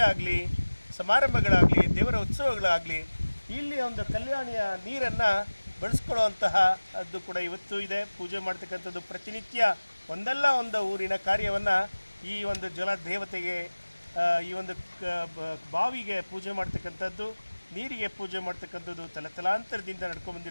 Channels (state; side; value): inverted; both; correlation -1.00